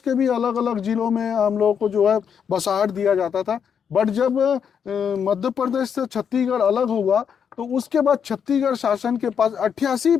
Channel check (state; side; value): quieter; right; 7.4 dB